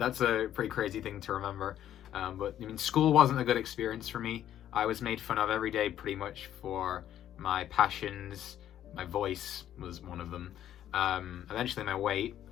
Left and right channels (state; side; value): quieter; right; 11.3 dB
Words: a pretty crazy thing to remember. But I mean, school wasn't a good experience for me. I was made fun of every day pretty much for my passions. My voice was one of them. Eventually my weight,